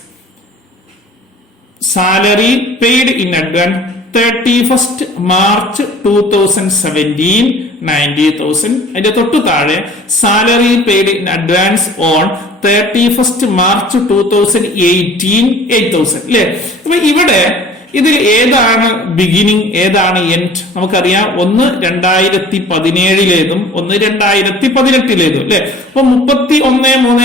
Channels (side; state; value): both; normal; correlation 0.48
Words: 31st March 2017 90,000. അതിന്റെ തൊട്ടു താഴെ salary paid in advance on 31st March 2018 8,000 അല്ലെ. അപ്പൊ ഇവിടെ ഇതിൽ ഏതാണ് ബിഗിനിങ് ഏതാണ് എൻഡ്? നമുക്കറിയാം, ഒന്ന് 2017-ലേതും ഒന്ന് 2018-ലേതും അല്ലെ. അപ്പൊ